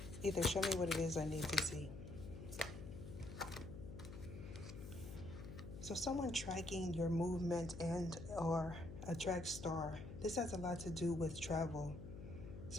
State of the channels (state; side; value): noise; left; hum, 10 dB below the sound